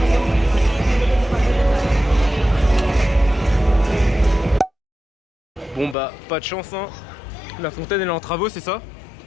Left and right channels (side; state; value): right; drops out; at 6.0 s